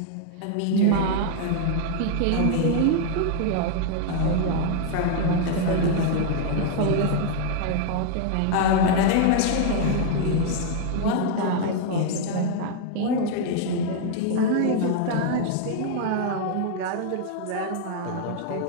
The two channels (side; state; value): both; different; correlation 0.00